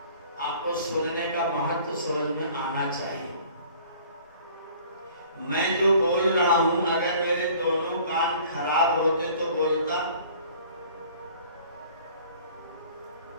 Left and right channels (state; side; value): inverted; both; correlation -0.51